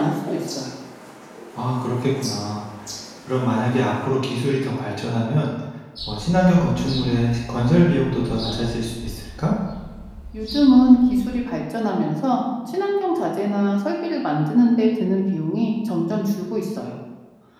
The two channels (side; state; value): both; identical; correlation 1.00